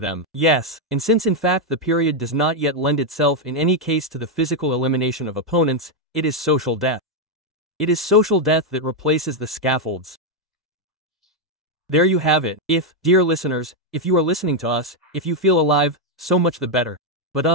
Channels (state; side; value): normal; both; correlation 0.01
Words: Yes, and since in fact the period does not yet lend itself in any case to the physical elimination of opponents, it is social death. It is social death that replaces the scaffolds. There you have it. If, dear listeners, if you are listening to us, if you feel alive, so much the better.